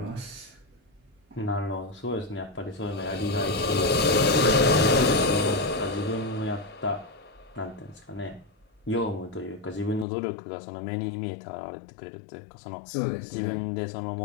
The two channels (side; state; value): right; drops out; at 10.1 s